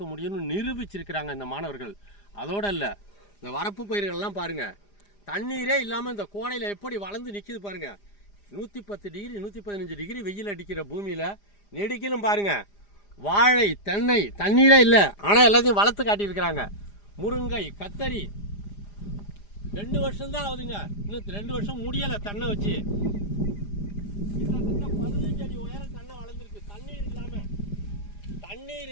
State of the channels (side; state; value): right; late; 4.9 ms